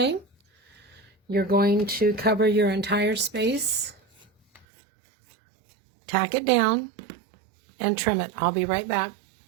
You're going to cover your entire space, tack it down, and trim it. I'll be right back.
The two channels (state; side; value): drops out; left; at 4.7 s